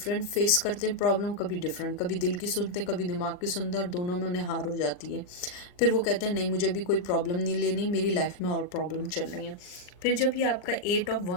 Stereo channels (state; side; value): late; right; 39 ms